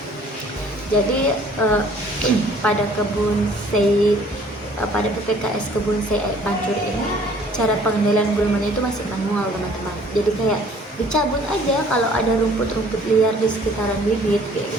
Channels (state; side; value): normal; both; correlation 0.56